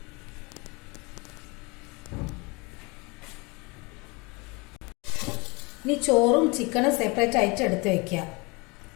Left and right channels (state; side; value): quieter; right; 27.6 dB